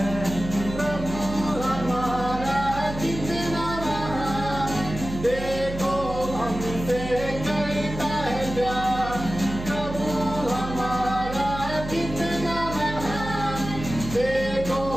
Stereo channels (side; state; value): right; noise; hum, 8 dB below the sound